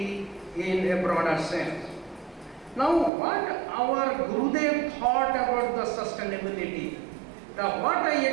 in a broader sense. Now, what our Gurudev thought about the sustainability? What I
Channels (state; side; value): drops out; left; at 3.1 s